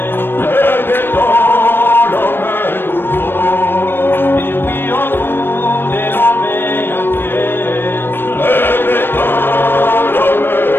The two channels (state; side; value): late; right; 0.10 ms